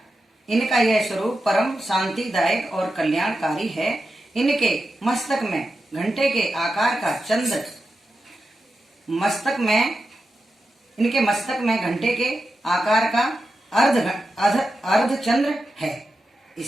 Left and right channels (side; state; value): both; normal; correlation 0.90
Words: यह स्वरूप परम शांतिदायक और कल्याणकारी है। इनके मस्तक में घंटे के आकार का चंद्र इनके मस्तक में घंटे के आकार का अर्ध चंद्र है।